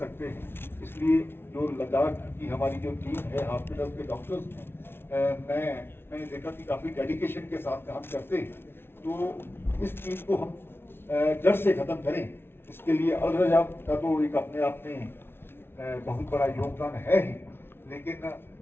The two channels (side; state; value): right; late; 0.11 ms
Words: हैं। इसलिए जो लद्दाख की हमारी जो टीम है, हॉस्पिटल के डॉक्टर्स हैं, मैंने देखा कि काफ़ी डेडिकेशन के साथ काम करते हैं। तो इस चीज़ को हम जड़ से ख़त्म करें, इसके लिए अल रजा का तो एक अपने आप में बहुत बड़ा योगदान है ही, लेकिन